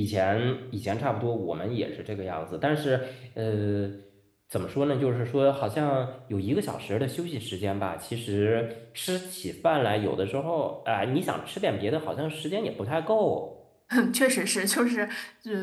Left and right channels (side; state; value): both; identical; correlation 1.00